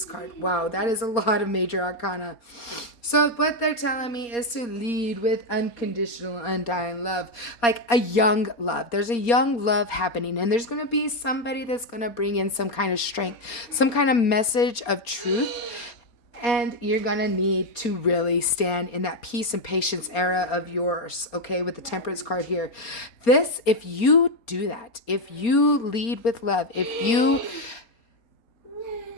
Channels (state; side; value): late; right; 4.3 ms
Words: card. Wow, that is a lot of major arcana. So what they're telling me is to lead with unconditional, undying love. Like a young love. There's a young love happening. And there's going to be somebody that's going to bring in some kind of strength. Some kind of message of truth. And you're going to need to really stand in that peace and patience era of yours. Okay, with the Temperance card here. This, if you do that. If you lead with love.